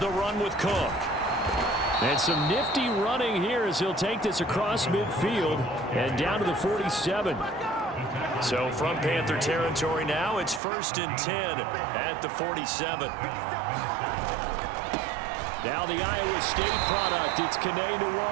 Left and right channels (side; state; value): left; drops out; at 10.6 s